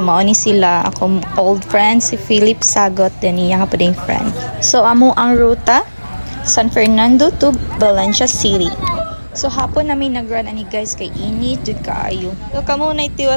ni sila akong old friend si Philip Sagot din niya ka pading friend. So amo ang ruta San Fernando to Valencia City. So hapon namin nag-run ani guys kay init jud kaayo. So kamo na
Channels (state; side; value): inverted; both; correlation -1.00